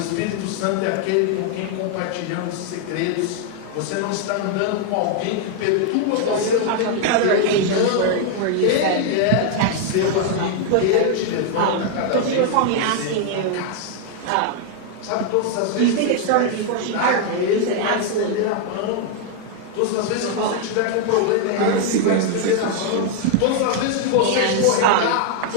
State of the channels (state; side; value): different; both; correlation 0.00